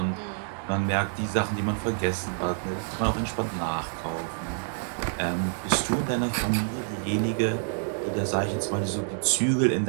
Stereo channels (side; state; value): left; silent; 60 dB below the other